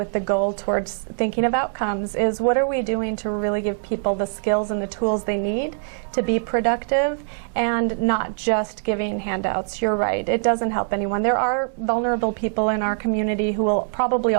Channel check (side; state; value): left; silent; digital silence